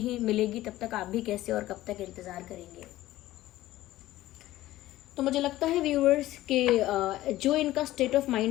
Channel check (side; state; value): right; quieter; 15.7 dB